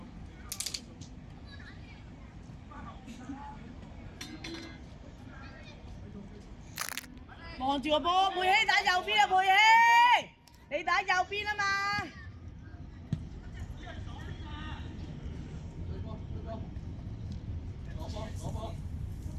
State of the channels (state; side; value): identical; both; correlation 1.00